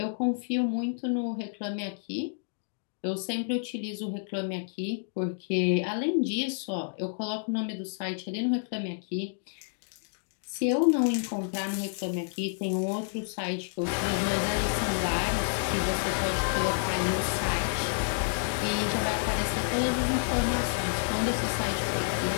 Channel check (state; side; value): silent; right; digital silence